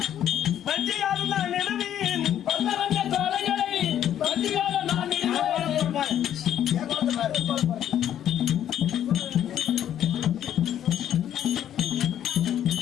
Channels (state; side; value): quieter; right; 10.6 dB